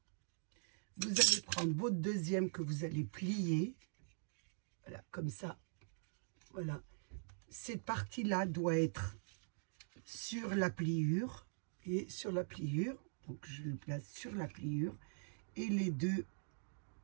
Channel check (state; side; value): silent; left; digital silence